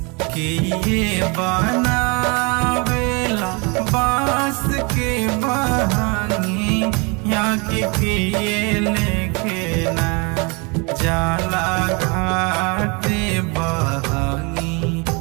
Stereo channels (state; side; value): quieter; left; 30.6 dB